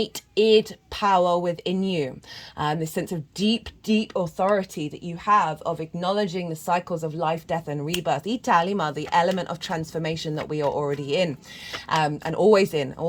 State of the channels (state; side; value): identical; both; correlation 1.00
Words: id power within you. This sense of deep, deep authority that you have of acknowledging the cycles of life, death, and rebirth. Italima, the element of transformation that we are already in. And always